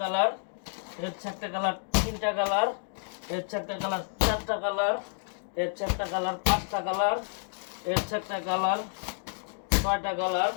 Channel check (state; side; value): silent; right; digital silence